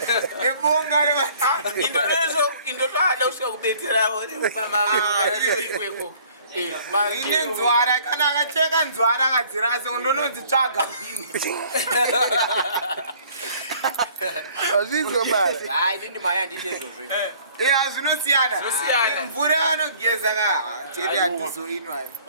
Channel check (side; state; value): both; inverted; correlation -0.55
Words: nebonga indotoada kusvika kubetseravo ine nzwara kana akacheka nzwara akadzirase ndononzitsvaga mbini azvinzwa bala inini maya handiti izvozvo zvinosiyana mvura yanogeza chete hatizoinwa